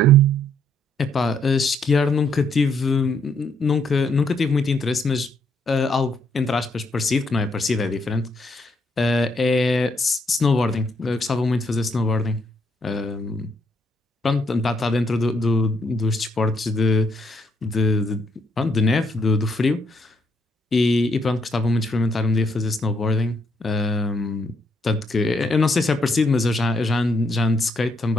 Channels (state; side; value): normal; both; correlation 0.73